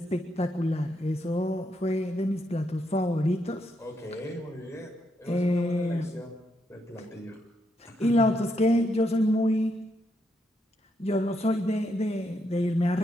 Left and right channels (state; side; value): normal; both; correlation 0.79